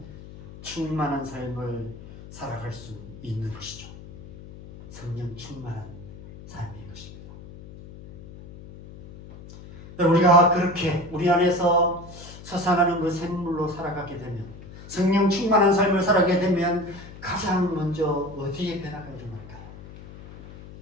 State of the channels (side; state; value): left; noise; hum, 16 dB below the sound